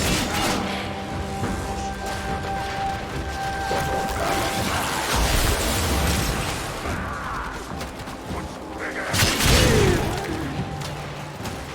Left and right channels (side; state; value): both; identical; correlation 1.00